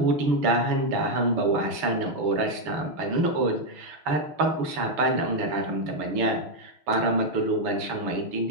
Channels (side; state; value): left; late; 6.4 ms